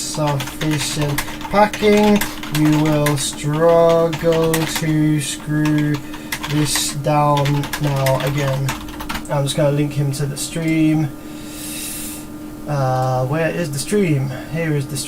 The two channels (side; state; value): both; identical; correlation 1.00